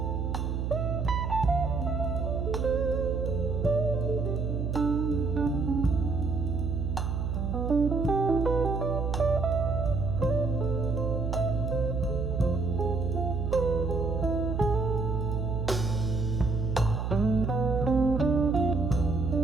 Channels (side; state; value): right; noise; hum, 1 dB below the sound